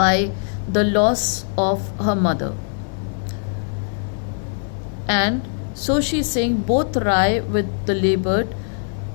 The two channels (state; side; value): silent; right; 59 dB below the other